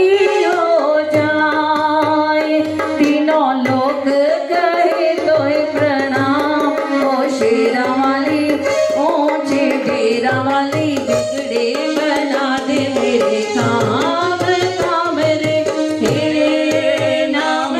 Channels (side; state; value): both; identical; correlation 1.00